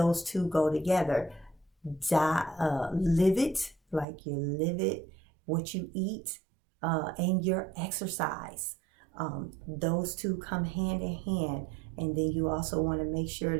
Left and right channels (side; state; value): left; drops out; at 4.0 s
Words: two go together. Live it, like you live it, what you eat, and your exercise. Those two come hand in hand. And then you also want to make sure